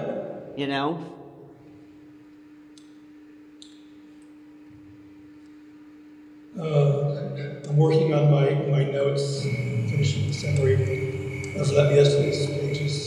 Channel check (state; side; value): identical; both; correlation 1.00